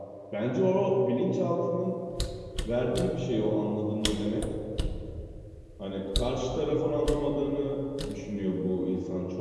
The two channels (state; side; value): identical; both; correlation 1.00